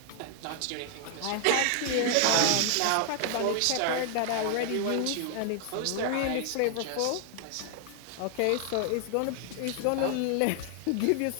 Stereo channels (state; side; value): different; both; correlation 0.00